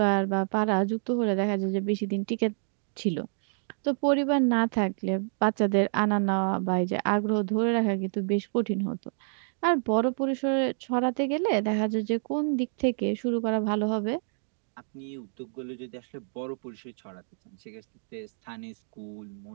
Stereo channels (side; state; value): left; silent; digital silence